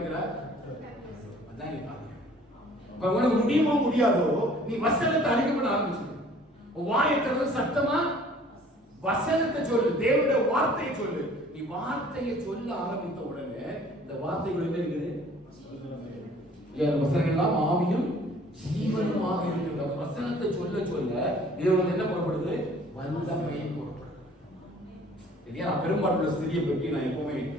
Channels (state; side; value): normal; both; correlation 0.53